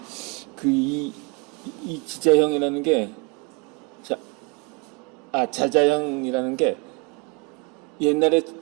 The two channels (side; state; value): left; quieter; 28.8 dB